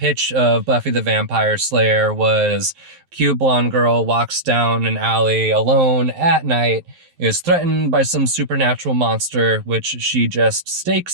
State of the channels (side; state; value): left; late; 11 ms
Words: of Buffy the Vampire Slayer was cute blonde girl walks down an alley alone at night, is threatened by some supernatural monster, which she just